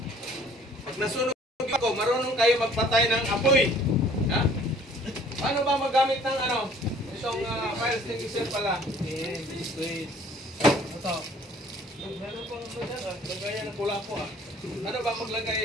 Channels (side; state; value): both; normal; correlation 0.55